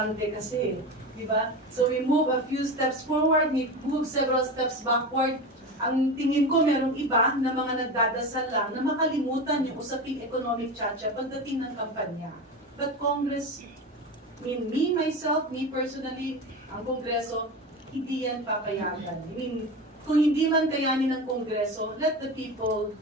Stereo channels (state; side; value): normal; both; correlation 0.25